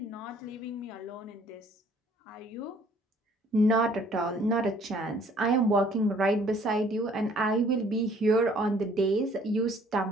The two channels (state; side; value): normal; both; correlation 0.58